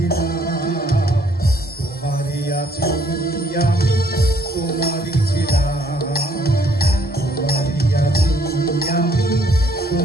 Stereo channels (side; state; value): both; normal; correlation 0.65